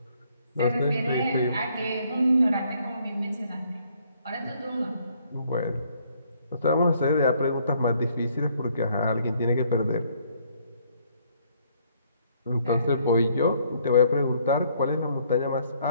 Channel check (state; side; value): inverted; both; correlation -0.66